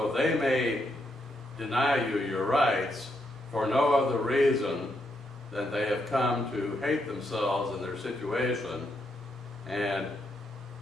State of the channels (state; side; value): normal; both; correlation 0.79